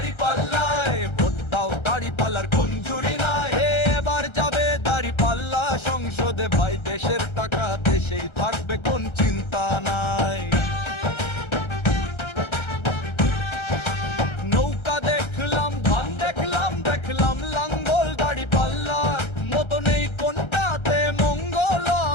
ভোট দাও দাঁড়িপাল্লার কোন জুরি নাই। এবার যাবে দাঁড়িপাল্লা সংসদে ভাই, দেশের টাকা দেশেই থাকবে কোন চিন্তা নাই। নৌকা দেখলাম, ধান দেখলাম, দেখলাম লাঙ্গল, দাঁড়িপাল্লার মতো নেই কোনটাতে মঙ্গল।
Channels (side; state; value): right; late; 1.3 ms